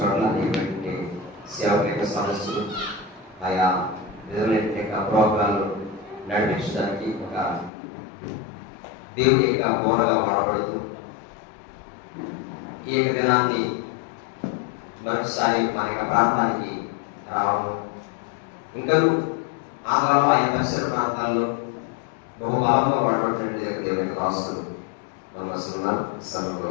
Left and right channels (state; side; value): drops out; right; at 7.7 s